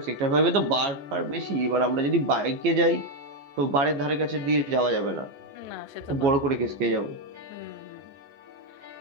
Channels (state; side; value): late; left; 14 ms